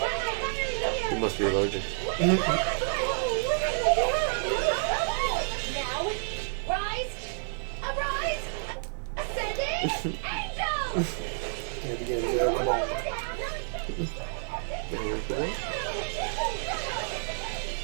You must be allergic. Now, rise, arise, ascending, angel! Yeah, begin. Yeah, come on.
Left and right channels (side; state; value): left; silent; 58 dB below the other